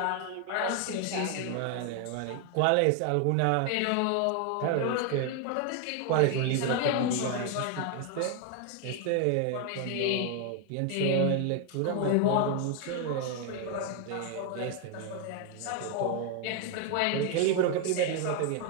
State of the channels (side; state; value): both; different; correlation 0.01